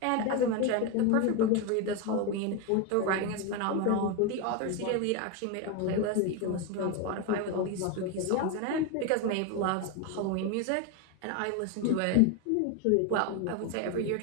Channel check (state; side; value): different; both; correlation 0.02